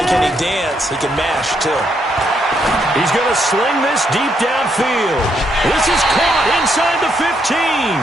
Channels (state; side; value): normal; both; correlation 0.76